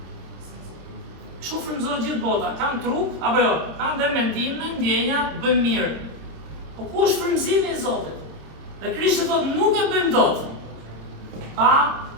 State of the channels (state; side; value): late; left; 26 ms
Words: Kështu frymëzohet gjithë bota, kanë trup, apo jo, kanë dhe mendime, ndjenja, bëjmë mirë. Po ku është frymëzimi i Zotit? Dhe Krishti thot, nuk e bëjmë dot, pa